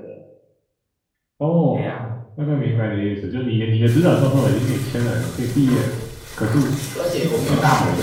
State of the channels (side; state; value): both; identical; correlation 1.00